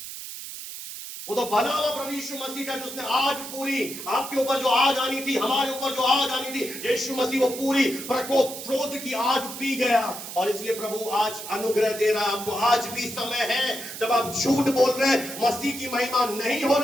वो तो भला हुआ प्रभु यीशु मसीह का, जिसने आग पूरी आपके ऊपर जो आग आनी थी, हमारे ऊपर जो आग आनी थी, यीशु मसीह वो पूरी प्रकोप क्रोध की आग पी गया। और इसलिए प्रभु आज अनुग्रह दे रहा है आपको। आज भी समय है जब आप झूठ बोल रहे हैं, मसीह की महिमा नहीं हो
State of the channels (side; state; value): right; noise; hiss, 10 dB below the sound